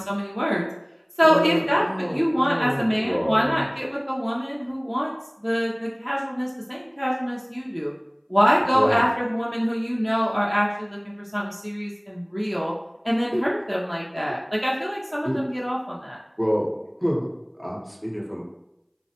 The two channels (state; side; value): identical; both; correlation 1.00